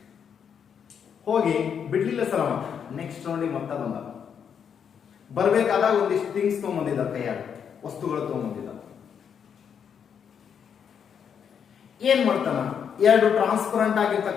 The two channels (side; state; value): right; quieter; 7.6 dB